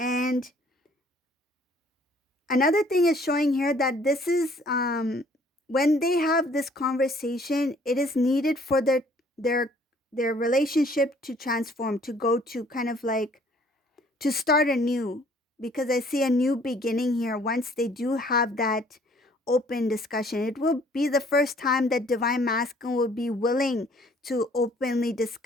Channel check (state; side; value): normal; both; correlation 0.59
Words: another thing is showing here that this is when they have this conversation, it is needed for their their relationship to transform, to go to kind of like to start anew, because I see a new beginning here. Once they do have that open discussion, it will be the first time that divine masculine will be willing to openly